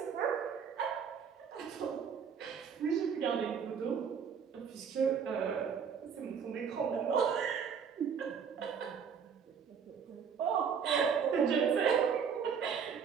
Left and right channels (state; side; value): quieter; left; 6.9 dB